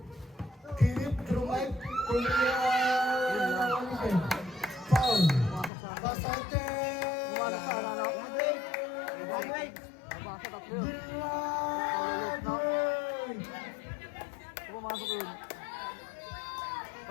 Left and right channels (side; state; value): right; drops out; at 5.7 s